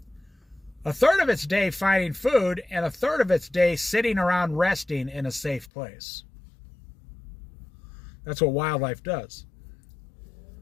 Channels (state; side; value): drops out; right; at 5.7 s